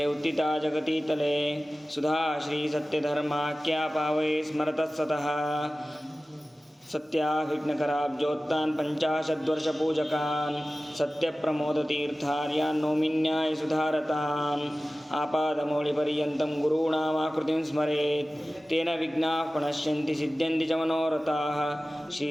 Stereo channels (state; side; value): normal; both; correlation 0.96